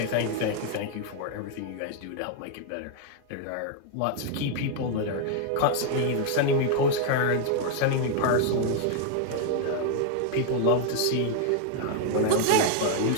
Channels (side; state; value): both; different; correlation 0.00